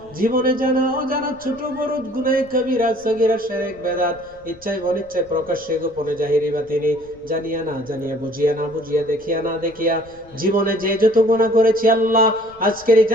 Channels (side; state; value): left; noise; rumble, 26 dB below the sound